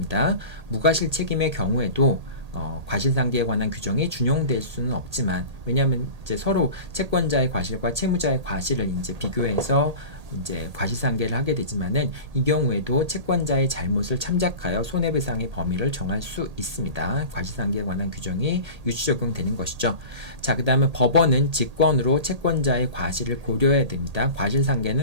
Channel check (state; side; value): late; left; 1.8 ms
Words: 무과실 책임의 경우에도 과실상계에 관한 규정이 준용될 수는 없지만, 왜냐하면 이제 서로 채권자의 과실과 채무자의 과실을 이제 비교해서 이제 과실상계를 하게 되지만은, 이 경우에도 채권자의 잘못을 참작하여 손해배상의 범위를 정할 수 있습니다. 과실상계에 관한 규정이 유추 적용되는 것이죠. 자, 그 다음에 법원은 직권으로 채권자의 과실을 고려해야 됩니다.